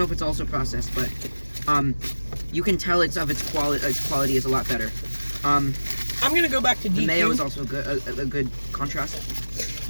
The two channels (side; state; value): both; inverted; correlation -1.00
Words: if it's also processed, but you can tell its quality. Its quality is a lot better. I'm gonna go back to DQ. The mayo is also a good contrast.